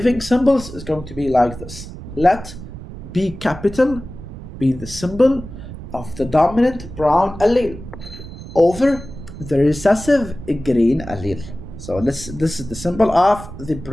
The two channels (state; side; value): noise; right; rumble, 13 dB below the sound